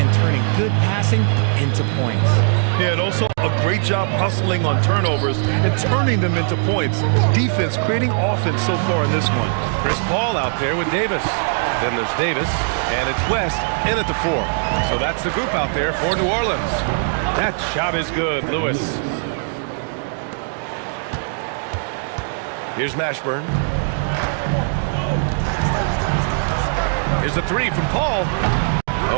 turning good passing into points. Yeah, and also a great job hustling on turnovers and turning them into points. Defense creating offense so far in this one. Chris Paul out there with Davis. Then there's Davis, and it's West in at the 4. So that's the group out there for New Orleans. That shot is good, Lewis. Here's Mashburn. Here's a 3 from Paul.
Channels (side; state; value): left; silent; digital silence